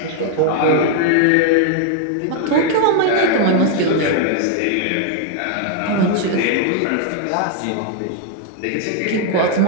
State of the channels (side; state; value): both; different; correlation 0.00